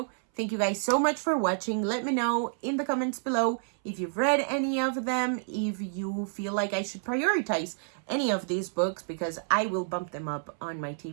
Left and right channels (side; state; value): left; silent; 58 dB below the other